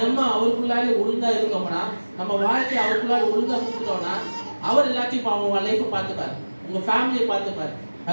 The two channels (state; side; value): inverted; both; correlation -1.00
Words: அவருக்குள்ளாலே ஒழுங்கா இருக்கோம்னா, நம்ம வாழ்க்கையை அவருக்குள்ளாலே ஒழுங்கா கொடுத்துட்டோம்னா, அவர் எல்லாத்தையும் அவங்க லைஃப்பை பார்த்துப்பார், உங்க ஃபேமிலியை பார்த்துப்பார்.